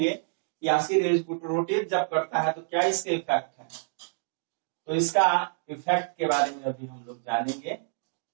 कि आखिर रोटेट जब करता है तो क्या इसके इफेक्ट है। तो इसका इफेक्ट के बारे में अभी हम लोग जानेंगे।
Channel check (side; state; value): left; silent; digital silence